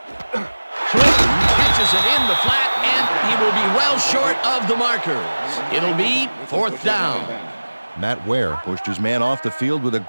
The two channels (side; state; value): both; inverted; correlation -1.00